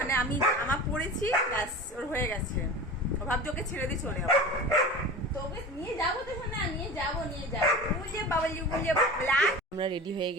আমি জামা পরেছি, ব্যাস ওর হয়ে গেছে। ও ভাবছে ওকে ছেড়ে দিয়ে চলে যাবো, তোকে নিয়ে যাবো তো না, নিয়ে যাবো বুঝে বাবালি বুঝে। আমরা রেডি হয়ে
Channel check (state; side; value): normal; both; correlation 0.34